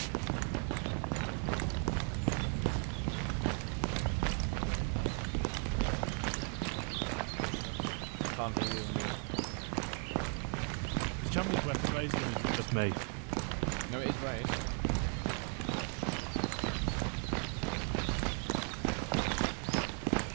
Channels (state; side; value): quieter; left; 39.9 dB